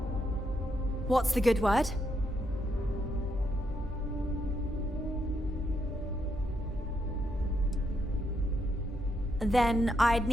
What's the good word? Then I'd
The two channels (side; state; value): both; normal; correlation 0.78